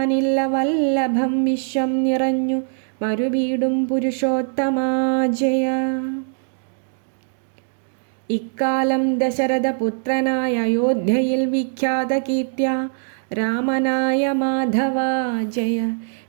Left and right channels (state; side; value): silent; left; digital silence